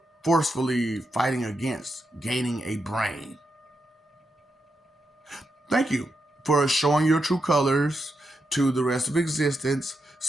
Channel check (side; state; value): both; normal; correlation 0.85